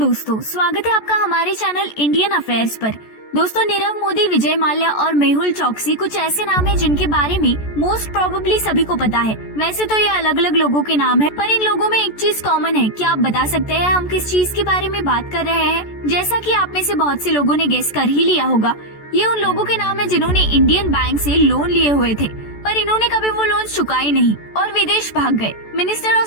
स्वागत है आपका हमारे चैनल इंडियन अफेयर्स पर। दोस्तों, नीरव मोदी, विजय माल्या और मेहुल चोकसी कुछ ऐसे नाम हैं जिनके बारे में मोस्ट प्रोबेबली सभी को पता है। वैसे तो ये अलग अलग लोगों के नाम है, पर इन लोगों में एक चीज कॉमन है। क्या आप बता सकते हैं हम किस चीज के बारे में बात कर रहे हैं? जैसा कि आप में से बहुत से लोगों ने गेस कर ही लिया होगा, ये उन लोगों के नाम है जिन्होंने इंडियन बैंक से लोन लिए हुए थे, पर इन्होंने कभी वो लोन चुकाए नहीं और विदेश भाग गए। Minister of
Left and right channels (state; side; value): late; right; 14 ms